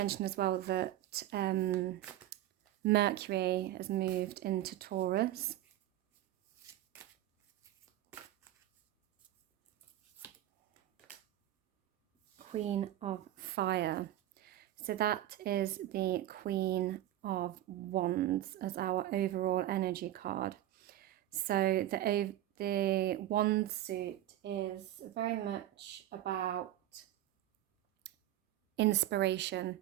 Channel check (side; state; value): left; quieter; 13.7 dB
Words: as well that Mercury has moved into Taurus. Queen of Fire. So that is the Queen of Wands as our overall energy card. So the Wand suit is very much about inspiration